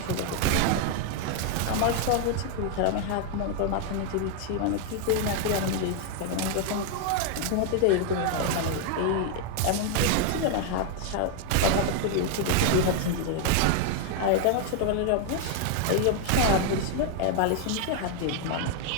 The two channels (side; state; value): both; different; correlation 0.00